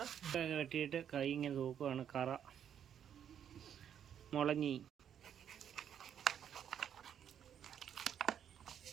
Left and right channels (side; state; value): left; quieter; 9.0 dB